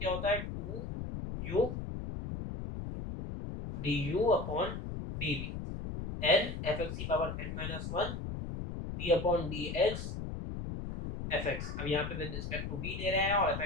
होता है 2u du upon dv, n f x की power n minus one d upon D x f x. अब यहाँ पे विद रिस्पेक्ट टू v ले रहे हैं और एफ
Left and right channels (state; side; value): noise; left; rumble, 6 dB below the sound